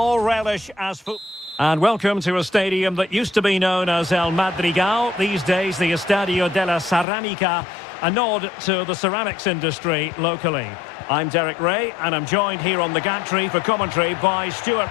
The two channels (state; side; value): drops out; right; at 7.1 s